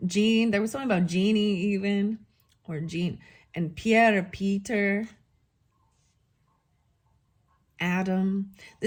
Jean. There was something about Jeannie even, or Jean, and Pierre, Peter, Adam.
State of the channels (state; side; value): identical; both; correlation 1.00